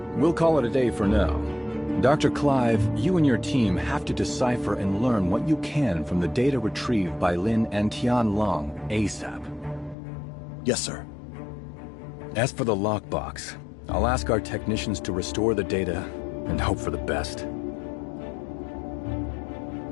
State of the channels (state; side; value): drops out; right; at 10.0 s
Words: We'll call it a day for now. Dr. Clive, you and your team have to decipher and learn what you can from the data retrieved by Lin and Tian Long ASAP. Yes, sir. As for the lockbox, I'll ask our technicians to restore the data and hope for the best.